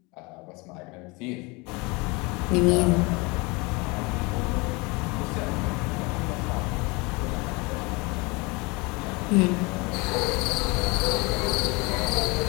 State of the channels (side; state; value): right; quieter; 26.7 dB